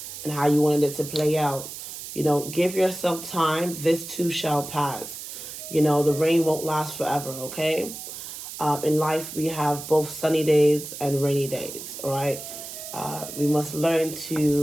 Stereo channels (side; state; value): right; noise; hiss, 10 dB below the sound